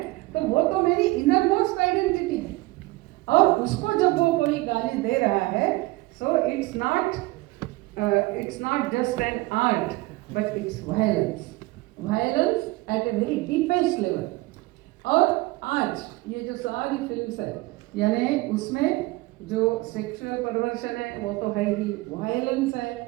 तो वो तो मेरी इनर मोस्ट आइडेंटिटी है, और उसको जब वो कोई गाली दे रहा है, so it's not just an art but it's violence at a very deepest level. और आज ये जो सारी फिल्म्स है, यानी उसमें जो सेक्सुअल परवर्शन है वो तो है ही, वायलेंस है।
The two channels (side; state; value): left; quieter; 21.0 dB